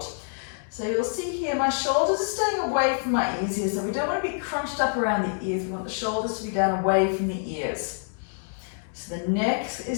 So you'll see here my shoulders are staying away from my ears here, so we don't want to be crunched up around the ears. We want the shoulders to be down away from the ears. So the neck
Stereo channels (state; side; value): silent; right; 60 dB below the other